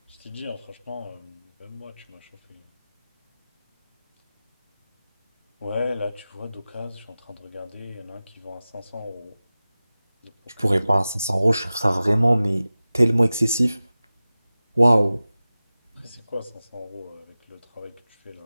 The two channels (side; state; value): both; inverted; correlation -0.96